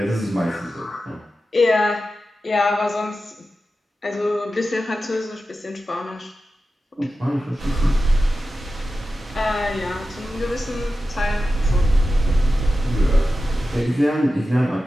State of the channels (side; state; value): both; normal; correlation 0.93